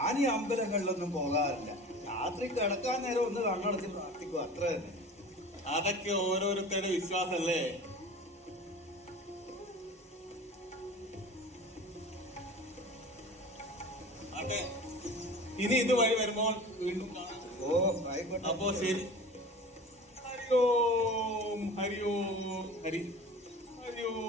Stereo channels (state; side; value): normal; both; correlation 0.38